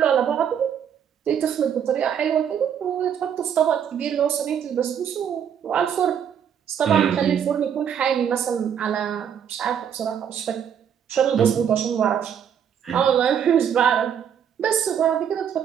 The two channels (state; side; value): quieter; left; 8.4 dB